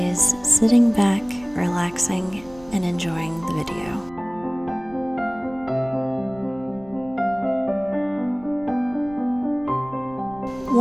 sitting back, relaxing, and enjoying the video.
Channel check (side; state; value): right; noise; rumble, 22 dB below the sound